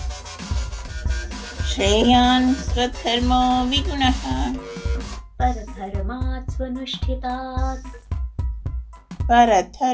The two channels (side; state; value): both; identical; correlation 1.00